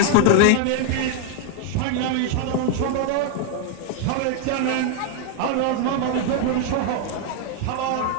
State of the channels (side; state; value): both; different; correlation 0.01